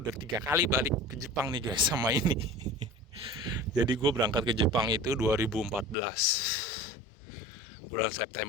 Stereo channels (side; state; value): right; drops out; at 6.0 s